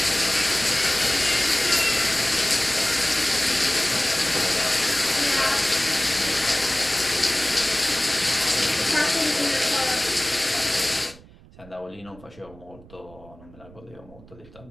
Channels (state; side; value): noise; right; rumble, 22 dB below the sound